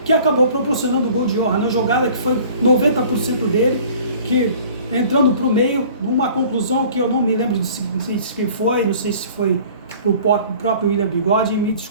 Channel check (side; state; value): both; inverted; correlation -0.49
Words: que acabou proporcionando o gol de honra na jogada, que foi 90% dele, que entrando para o meio, numa conclusão que eu não me lembro, não sei se foi para o próprio William Bigode, me